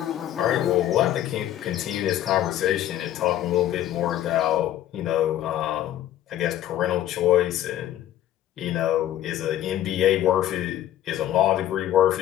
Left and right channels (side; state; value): right; quieter; 12.4 dB